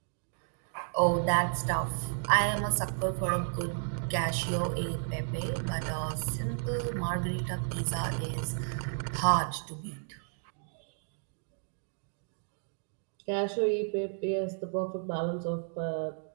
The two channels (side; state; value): left; silent; digital silence